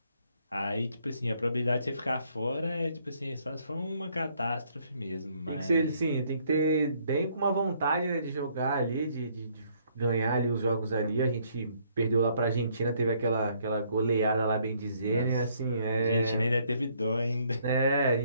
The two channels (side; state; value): both; inverted; correlation -0.67